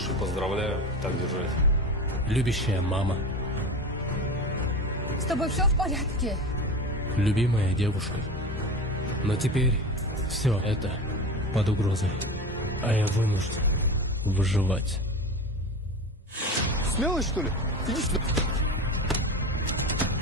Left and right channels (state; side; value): normal; both; correlation 0.29